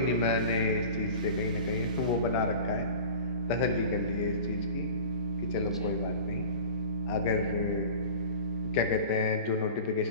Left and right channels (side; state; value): both; inverted; correlation -0.38